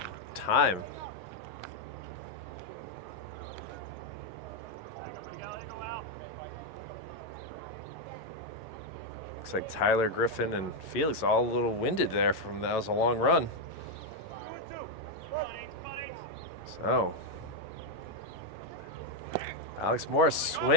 time. Looks like Tyler, Griffin, and Felix all a little winded there from that was a long run. So Alex Morris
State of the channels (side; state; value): right; late; 9.1 ms